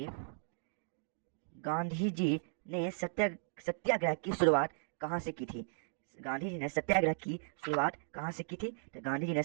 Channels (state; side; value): silent; left; digital silence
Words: गांधी जी ने सत्याग्रह की शुरुआत कहाँ से की थी। गांधी जी ने सत्याग्रह की शुरुआत कहाँ से की थी? तो गांधी जी ने